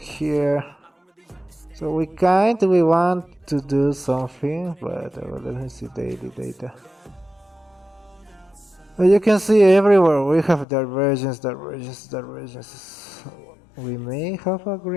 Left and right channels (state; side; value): drops out; right; at 10.7 s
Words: So we want to do something, but let me see daily data. You can see everywhere we have divergence. We may have a